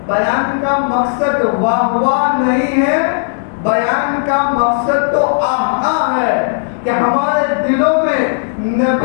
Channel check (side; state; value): right; silent; digital silence